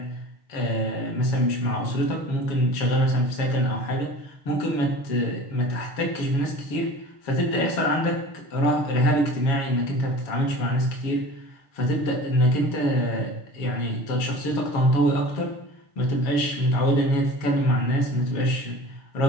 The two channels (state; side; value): late; right; 6.6 ms